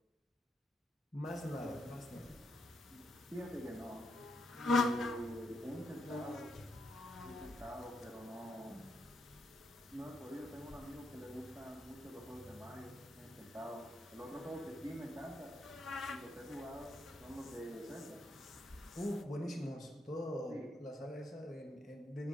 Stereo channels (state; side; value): normal; both; correlation 0.79